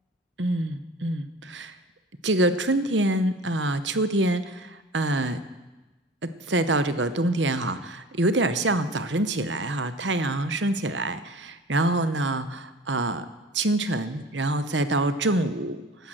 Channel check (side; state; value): both; normal; correlation 0.40